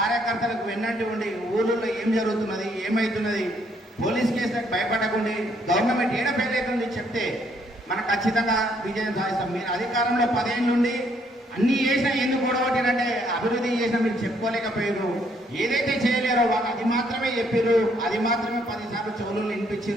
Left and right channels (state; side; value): normal; both; correlation 0.69